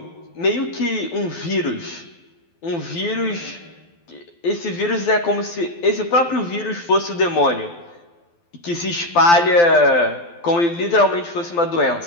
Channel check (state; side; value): late; right; 12 ms